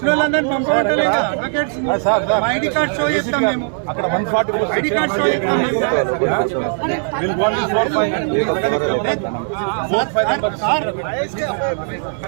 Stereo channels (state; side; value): silent; left; digital silence